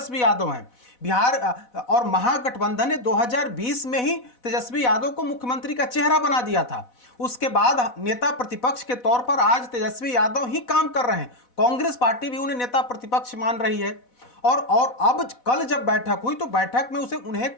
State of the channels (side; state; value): right; late; 4.1 ms